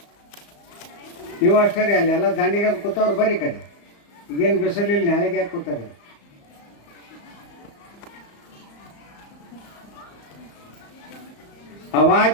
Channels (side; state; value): right; late; 35 ms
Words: ನೀವು ಅಷ್ಟೇ ರೀ. ಅಲ್ಲೆಲ್ಲ ದಂಡಿಗೆ ಕೂತವ್ರು ಬರೀ ಕಡೆ. ಈಗೇನು ಬಿಸಿಲಿಲ್ಲ, ನಾಳೆಗೆ ಯಾಕೆ ಕೂತಾರೆ?